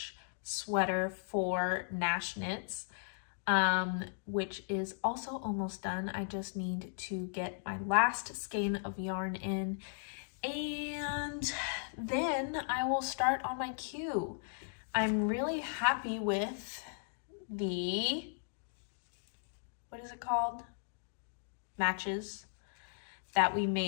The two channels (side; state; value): right; silent; digital silence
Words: sweater for Nash Knits, which is also almost done. I just need to get my last skein of yarn in, and then I will start on my queue. I'm really happy with the, what is it called? Matches that we